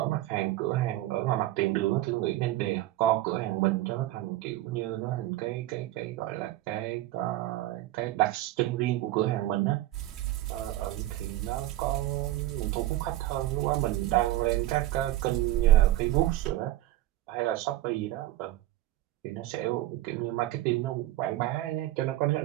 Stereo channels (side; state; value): left; quieter; 15.6 dB